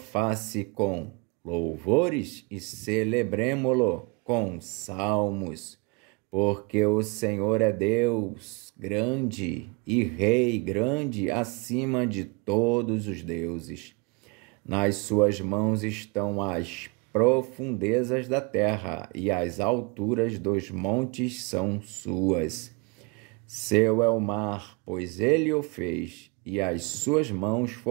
com louvores e celebremo-lo com salmos. Porque o Senhor é Deus grande e Rei grande acima de todos os deuses. Nas suas mãos estão as profundezas da terra e as alturas dos montes são suas. Seu é o mar, pois ele o fez, e as suas mãos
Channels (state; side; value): quieter; left; 29.6 dB